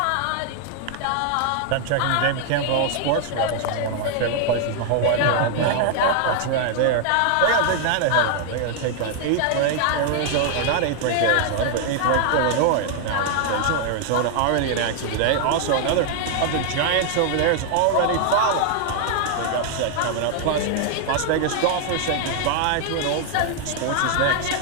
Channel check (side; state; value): both; different; correlation 0.00